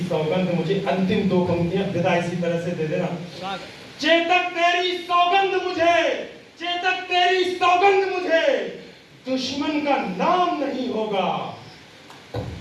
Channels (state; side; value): identical; both; correlation 1.00